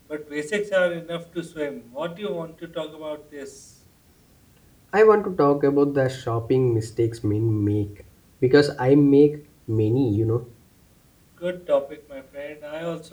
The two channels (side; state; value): both; identical; correlation 1.00